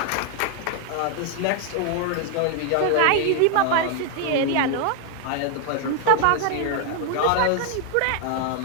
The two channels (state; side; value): different; both; correlation 0.00